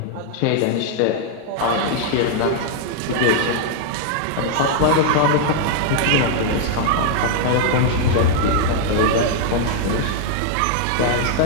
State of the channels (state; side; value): different; both; correlation 0.00